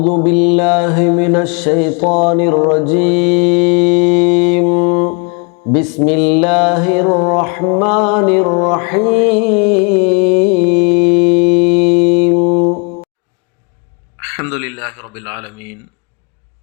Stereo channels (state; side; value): quieter; right; 35.2 dB